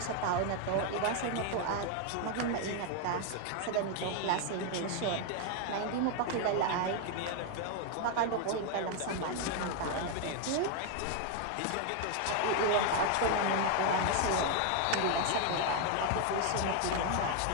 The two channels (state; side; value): different; both; correlation 0.00